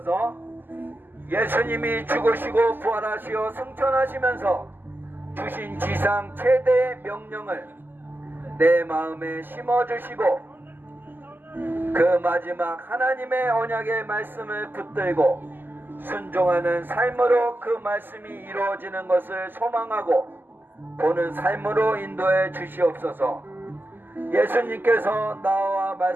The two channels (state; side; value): late; left; 0.092 ms